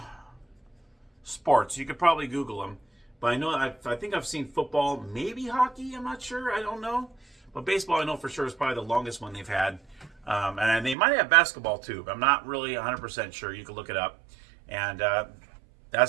sports. You could probably Google them. But I know, I think I've seen football, maybe hockey, I'm not sure, I don't know. But baseball, I know for sure, is probably the longest one they've had. And they might have basketball too, but I'm not really 100% sure. You can look it up. And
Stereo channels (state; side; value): drops out; left; at 11.0 s